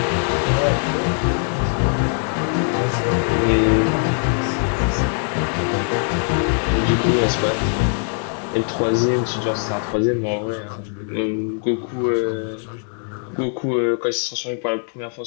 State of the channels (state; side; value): silent; right; 56 dB below the other